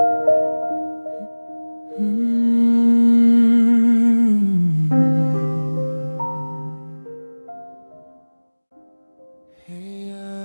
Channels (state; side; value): inverted; both; correlation -1.00